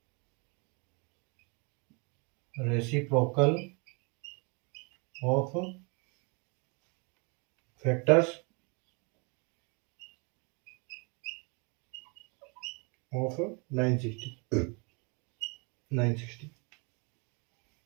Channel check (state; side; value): quieter; left; 33.0 dB